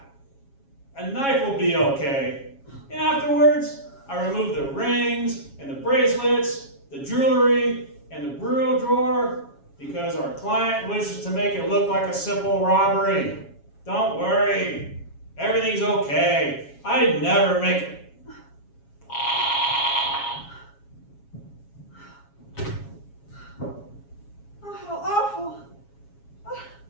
a knife will be okay. And afterwards, I remove the rings and the bracelets, the jewelry, and the bureau drawer because our client wishes to make it look like a simple robbery. Don't worry, everything's okay. I never make it. Oh, how awful.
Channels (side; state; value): right; late; 7.2 ms